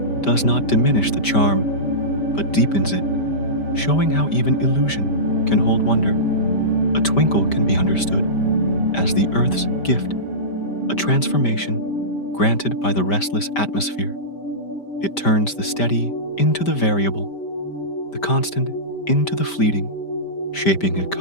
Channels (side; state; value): right; late; 5.1 ms